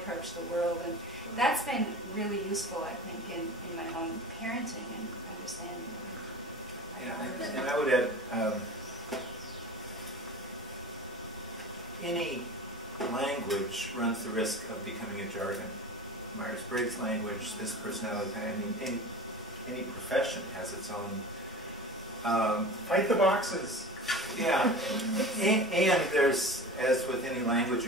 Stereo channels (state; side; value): normal; both; correlation 0.35